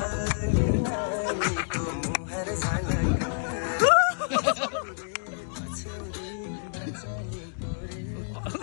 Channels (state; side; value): silent; right; digital silence